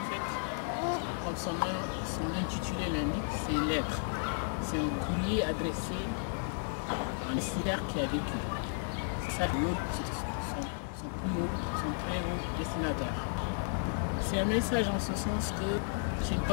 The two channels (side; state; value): right; silent; 55 dB below the other